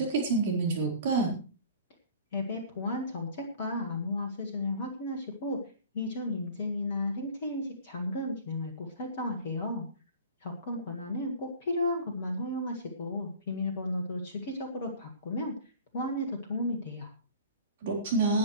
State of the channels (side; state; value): both; inverted; correlation -0.43